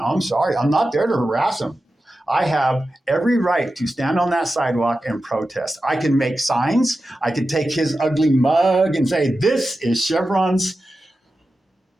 I'm sorry. I'm not there to harass them. I have every right to stand on that sidewalk and protest. I can make signs. I can take his ugly mug and say, this is Chevron's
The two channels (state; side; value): normal; both; correlation 0.92